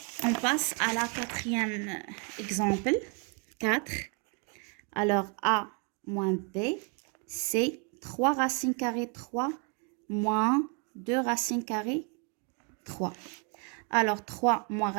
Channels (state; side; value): quieter; left; 34.1 dB